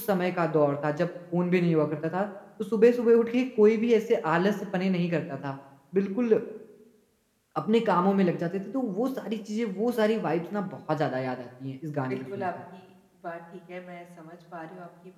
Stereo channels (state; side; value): identical; both; correlation 1.00